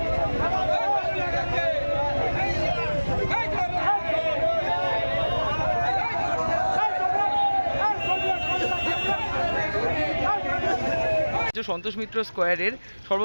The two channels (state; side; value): inverted; both; correlation -1.00